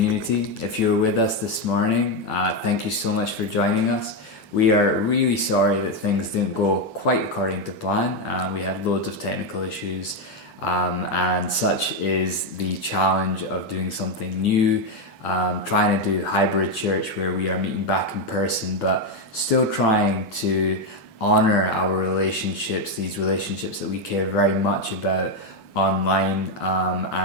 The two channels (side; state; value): right; late; 8.9 ms